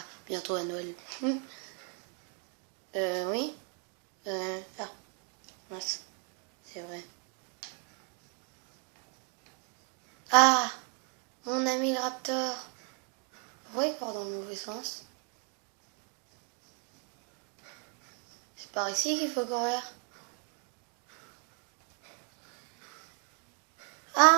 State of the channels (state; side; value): quieter; left; 37.8 dB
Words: bientôt à Noël. Oui. Ah, mince. C'est vrai. Ah, mon ami le raptor. Vous voyez quoi dans le mauvais sens? C'est par ici qu'il faut courir.